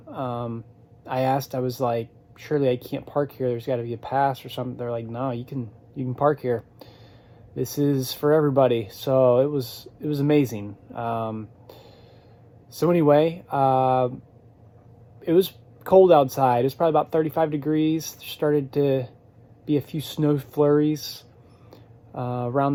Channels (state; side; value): identical; both; correlation 1.00